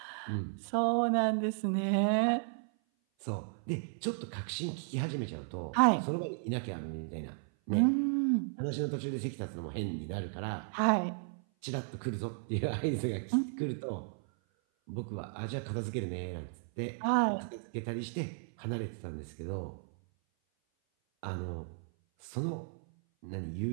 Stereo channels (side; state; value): left; silent; 55 dB below the other